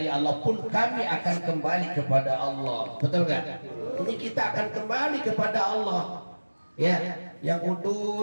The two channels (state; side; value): inverted; both; correlation -1.00